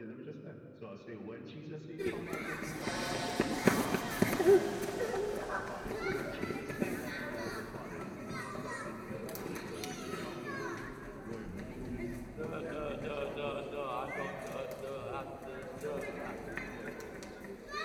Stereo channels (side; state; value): both; identical; correlation 1.00